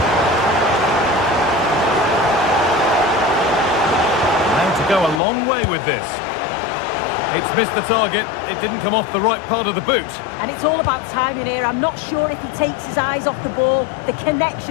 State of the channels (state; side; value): drops out; right; at 5.2 s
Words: Go a long way with this. It's missed the target. It didn't come off the right part of the boot. And it's all about timing here. I'm not sure if he takes his eyes off the ball. The